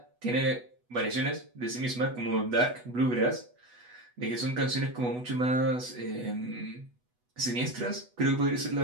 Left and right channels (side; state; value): left; late; 8.1 ms